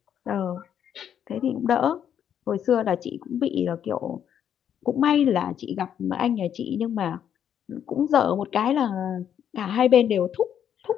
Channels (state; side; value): quieter; right; 9.2 dB